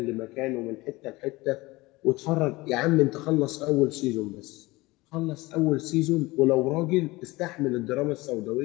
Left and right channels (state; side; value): quieter; right; 21.3 dB